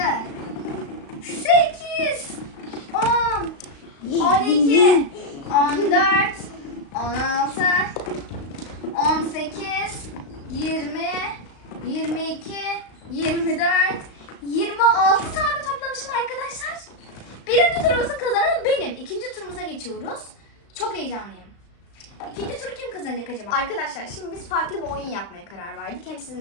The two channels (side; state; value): right; late; 35 ms